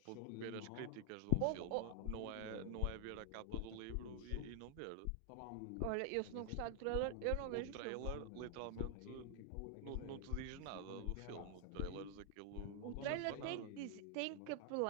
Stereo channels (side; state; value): both; different; correlation 0.00